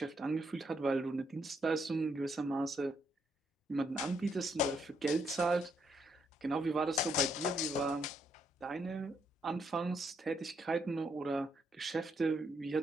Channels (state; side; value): normal; both; correlation 0.75